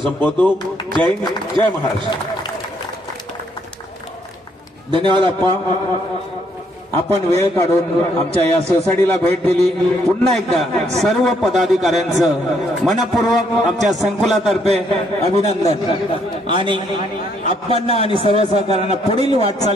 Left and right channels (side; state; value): both; normal; correlation 0.70